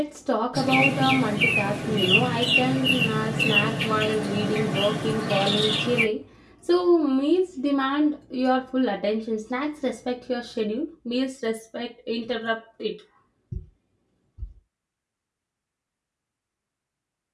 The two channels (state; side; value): identical; both; correlation 1.00